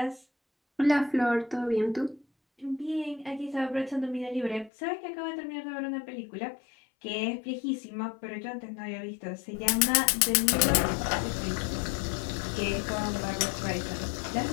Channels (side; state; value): right; drops out; at 4.7 s